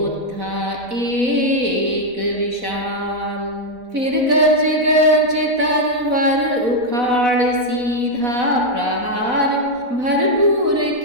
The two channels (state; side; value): late; left; 4.0 ms